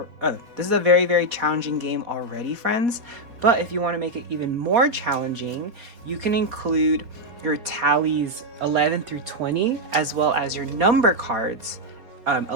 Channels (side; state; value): left; late; 4.4 ms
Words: is a very, very challenging game already, friends. But if you want to make it even more challenging, you can include your tallies 11 through 20, as well as your number cards